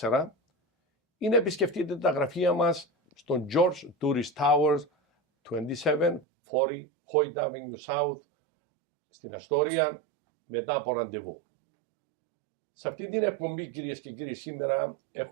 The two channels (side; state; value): left; drops out; at 6.2 s